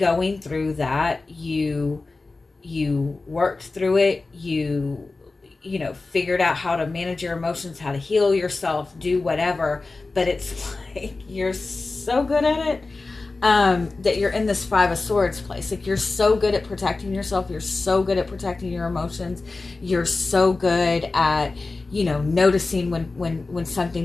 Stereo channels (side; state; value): right; quieter; 3.6 dB